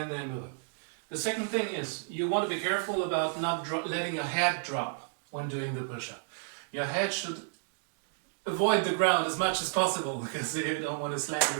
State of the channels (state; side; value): silent; left; digital silence